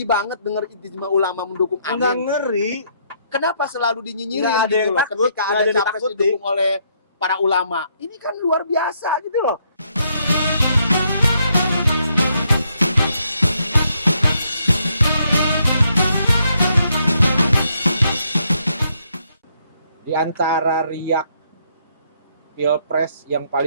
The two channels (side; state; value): both; inverted; correlation -0.73